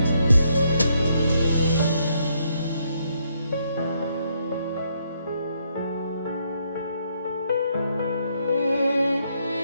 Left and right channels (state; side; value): inverted; both; correlation -0.74